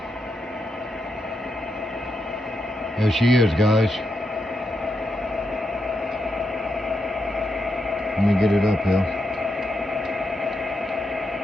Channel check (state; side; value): normal; both; correlation 0.83